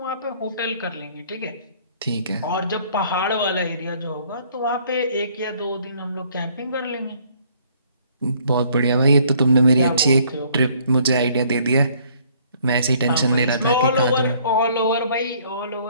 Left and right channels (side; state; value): both; inverted; correlation -0.61